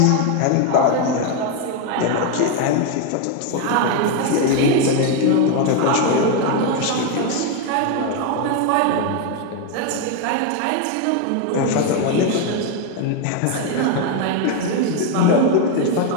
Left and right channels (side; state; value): both; different; correlation 0.01